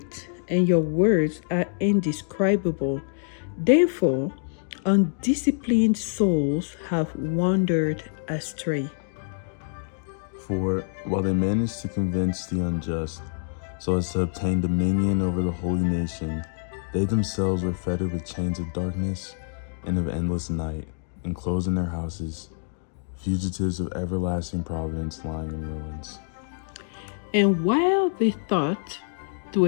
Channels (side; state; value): right; silent; digital silence